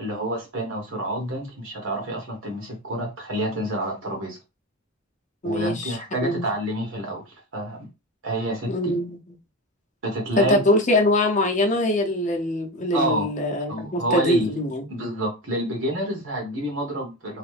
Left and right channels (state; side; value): normal; both; correlation 0.23